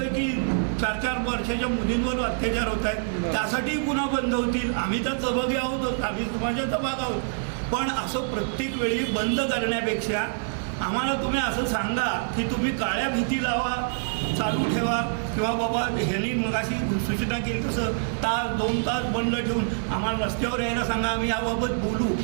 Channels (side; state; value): left; silent; 61 dB below the other